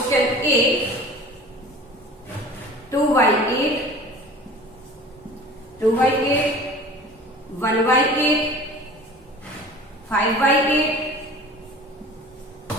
A. 2 by 8, 2 by 8, 1 by 8, 5 by 8,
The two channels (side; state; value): both; normal; correlation 0.42